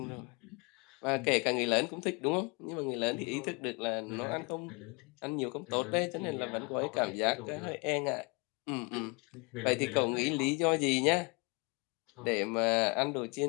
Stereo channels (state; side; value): quieter; right; 31.0 dB